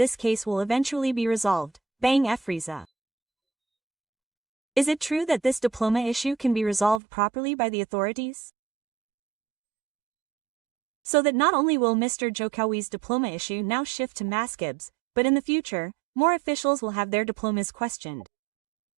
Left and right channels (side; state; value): left; drops out; at 7.0 s